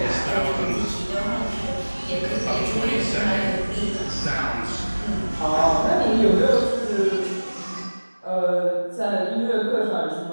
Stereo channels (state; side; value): inverted; both; correlation -1.00